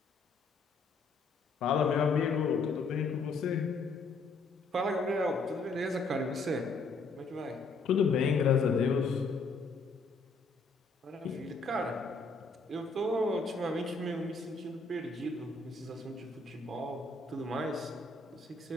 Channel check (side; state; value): right; quieter; 3.8 dB